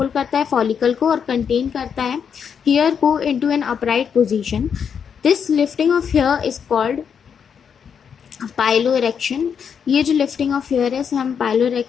करता है फॉलिकल को और कंटेन करता है हेयर को into an upright position. This lifting of hair is called piloerection. ये जो लिफ्टिंग ऑफ हेयर है इसे हम पाइलो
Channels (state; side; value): quieter; right; 7.2 dB